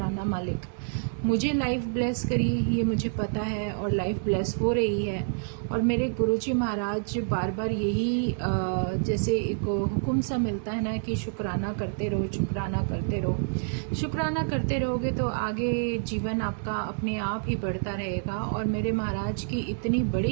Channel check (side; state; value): left; silent; digital silence